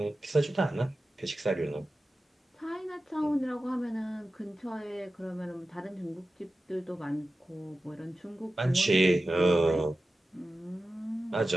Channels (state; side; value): normal; both; correlation 0.94